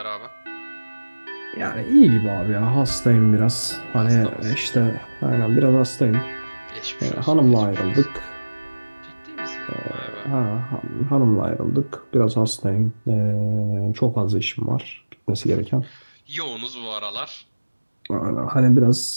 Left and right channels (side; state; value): both; inverted; correlation -1.00